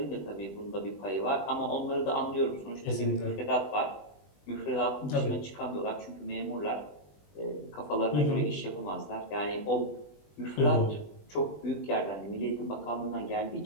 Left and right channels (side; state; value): right; late; 20 ms